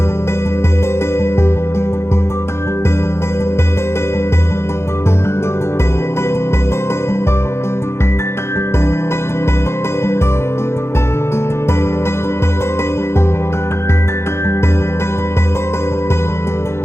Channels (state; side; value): late; right; 0.13 ms